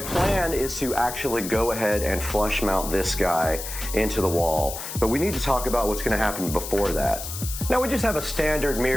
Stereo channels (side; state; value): left; noise; hiss, 8 dB below the sound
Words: is to actually go ahead and flush mount this guy into the wall, but we need to talk about what's going to happen before that. Now we just have a standard